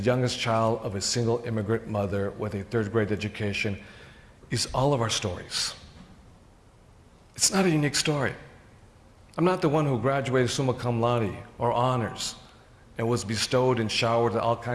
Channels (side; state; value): both; identical; correlation 1.00